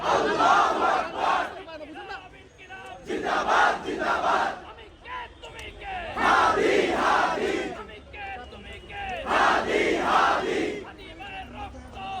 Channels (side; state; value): both; identical; correlation 1.00